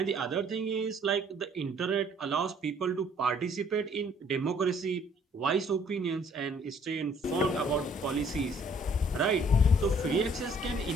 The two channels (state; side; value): normal; both; correlation 0.60